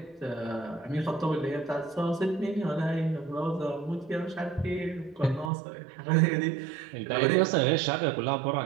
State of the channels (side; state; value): left; drops out; at 5.5 s